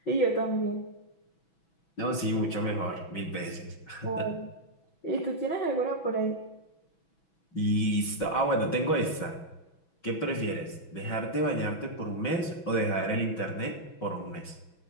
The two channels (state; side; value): late; right; 6.1 ms